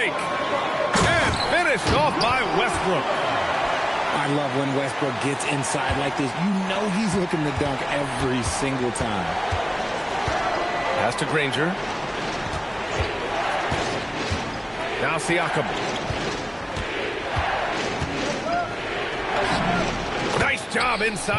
And finished off by Westbrook. I love when Westbrook gets inside like this. You know he's looking to dunk every single time. Pass to Granger. Now Siakam. Nice job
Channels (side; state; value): both; identical; correlation 1.00